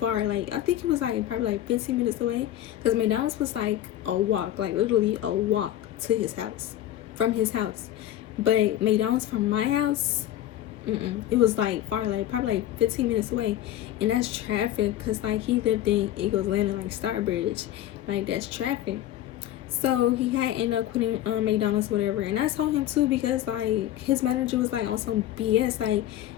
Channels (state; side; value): quieter; right; 12.8 dB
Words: Like, I think it was like probably like 15 minutes away, because McDonald's was like a walk, like literally a walk to his house, from his house. But McDonald's from my house, it was like far, like probably like 15 minutes away. And that's traffic, because like he lived in Eagles Landing, like Starbridge, like that's traffic. So he had ended up quitting McDonald's, whatever. And I told him too, because like his manager was like on some BS. Like